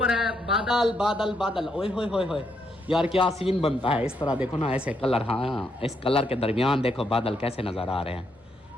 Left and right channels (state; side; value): normal; both; correlation 0.77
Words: है बादल बादल बादल, ओए होए होए होए यार क्या सीन बनता है इस तरह, देखो ना ऐसे कलर, हाँ इस कलर के दरमियान देखो बादल कैसे नजर आ रहे हैं।